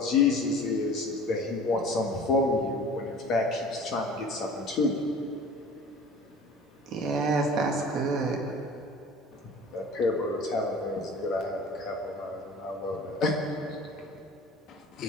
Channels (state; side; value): normal; both; correlation 0.43